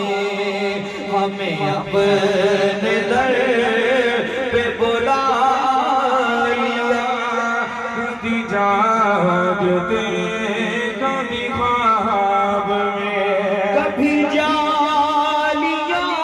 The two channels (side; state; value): both; identical; correlation 1.00